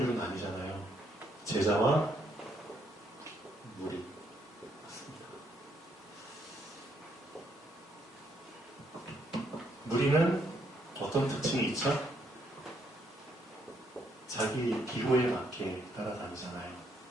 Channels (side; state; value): both; normal; correlation 0.73